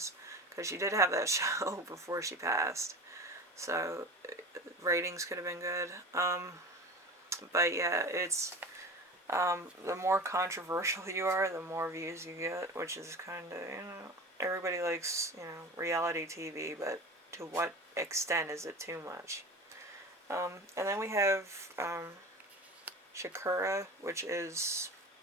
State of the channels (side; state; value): both; normal; correlation 0.32